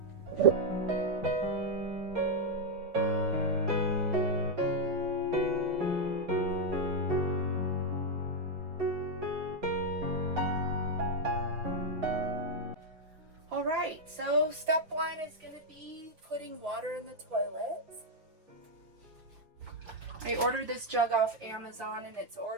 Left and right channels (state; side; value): late; left; 6.0 ms